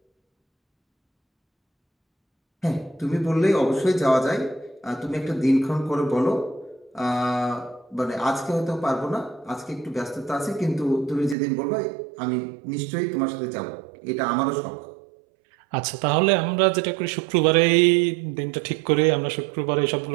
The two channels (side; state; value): left; drops out; at 11.4 s